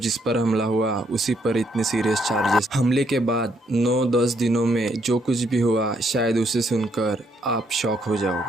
पर हमला हुआ उसी पर इतने सीरियस चार्जेस। हमले के बाद 9-10 दिनों में जो कुछ भी हुआ शायद उसे सुनकर आप शॉक हो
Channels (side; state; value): both; normal; correlation 0.72